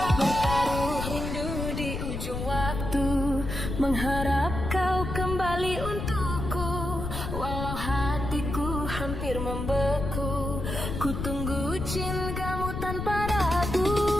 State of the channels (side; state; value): left; noise; rumble, 5 dB below the sound